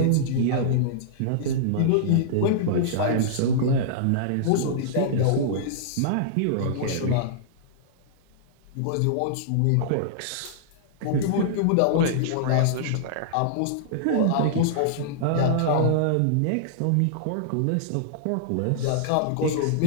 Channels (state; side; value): different; both; correlation -0.02